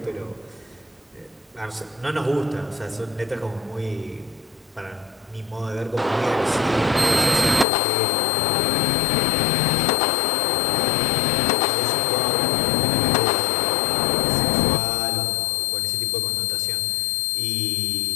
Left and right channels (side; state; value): right; drops out; at 7.7 s